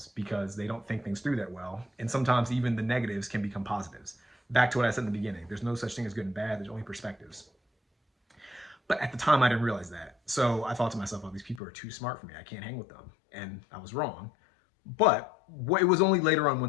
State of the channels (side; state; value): right; drops out; at 11.6 s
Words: because they don't think things through that well. And sometimes even the negatives can become positives. Back to what I said in the beginning, there's no such thing as good and bad, there's only perspectives. But at the time, I didn't realize that. So I thought to myself, oh, these people are too smart for me. I can't hang with them. And I was wrong. But it was only later on,